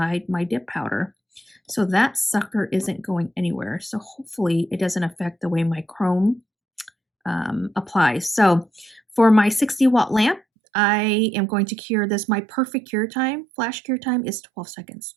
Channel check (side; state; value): left; drops out; at 10.4 s